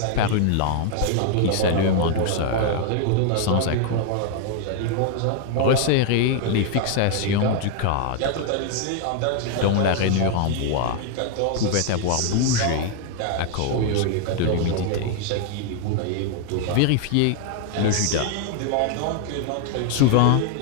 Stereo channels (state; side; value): different; both; correlation 0.00